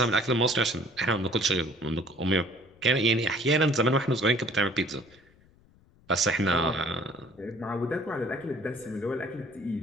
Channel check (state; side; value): noise; left; rumble, 29 dB below the sound